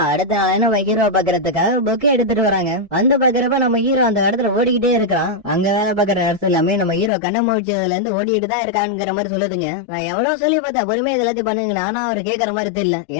அடுத்த நாள் நம்ம ஹீரோ பாக்குறதுக்காக பொக்கே எடுத்துட்டு வராங்க. அந்த பாக்குறப்ப நம்ம ஹீரோ அந்த இடத்துல ஓடிக்கிட்டே இருக்கான். அங்க வேலை பாக்குற இடத்துல எல்லாமே நம்ம ஹீரோ கண்ண முடிச்சதுல இருந்து ஓடிட்டு இருக்கான்ங்கிற மாதிரி சொல்லுதுங்க. நான் எவ்வளவு சொல்லி பார்த்தா பொறுமையா எல்லாத்தையும் பண்ணுங்க, ஆனா அவர் கேட்கற மாதிரி தெரியல.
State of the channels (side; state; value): right; drops out; at 7.1 s